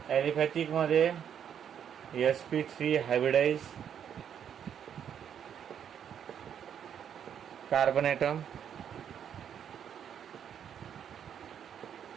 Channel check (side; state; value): left; quieter; 8.7 dB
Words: ॲलिफॅटिक मध्ये sp3 हायब्रिडाइज कार्बन ॲटम.